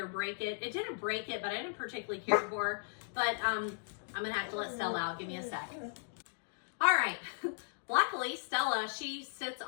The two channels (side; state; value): right; silent; digital silence